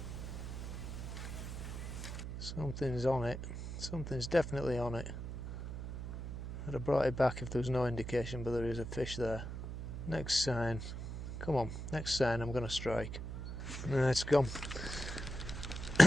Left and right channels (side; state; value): right; noise; hum, 6 dB below the sound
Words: Something's on it. Something's definitely on it. I'd have brought it back if there was no indication, but there is a fish there. Next sign. Come on, next sign I'm going to strike. No, it's gone.